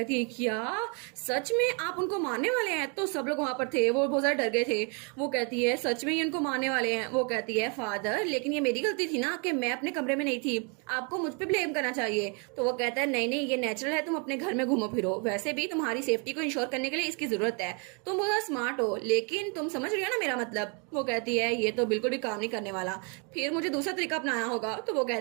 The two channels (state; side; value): quieter; left; 35.3 dB